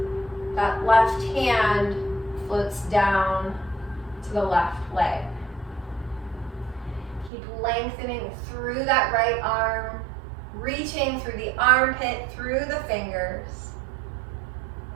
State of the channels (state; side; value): drops out; left; at 7.3 s